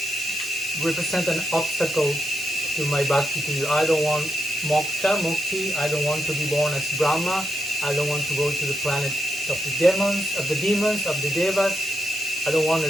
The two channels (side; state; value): both; normal; correlation 0.84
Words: represent an obstacle to my bhakti to you. I don't want moksha, mukti. I don't want to be born as Brahma. I don't want to go to the planet of the demons, of the devas. I don't want a